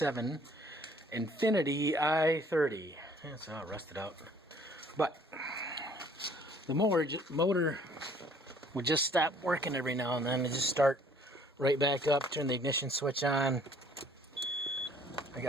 Infiniti i30. It's all rusted out. But the motor would just stop working every now and then and just start right back up, turn the ignition switch on. I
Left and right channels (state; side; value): normal; both; correlation 0.58